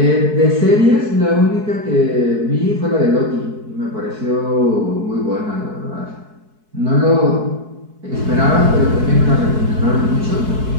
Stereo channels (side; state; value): left; late; 4.6 ms